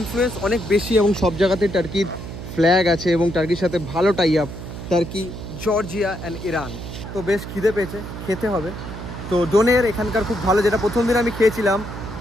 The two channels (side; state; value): right; noise; hum, 9 dB below the sound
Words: অনেক বেশি, এবং সব জায়গাতে টার্কির ফ্ল্যাগ আছে এবং টার্কির সাথে ভালো tie up, Turkey, Georgia and Iran. তো বেশ খিদে পেয়েছে, খেতে হবে। তো ডোনের এখানকার খুব ভালো, যেটা প্রথম দিন আমি খেয়েছিলাম,